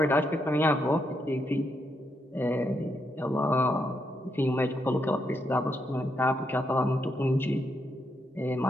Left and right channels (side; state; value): both; normal; correlation 0.80